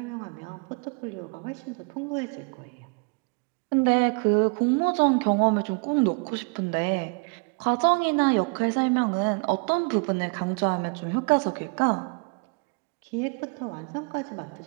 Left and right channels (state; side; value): quieter; left; 33.5 dB